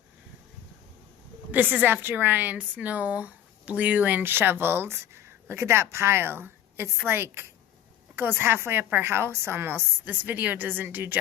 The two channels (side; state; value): right; quieter; 10.9 dB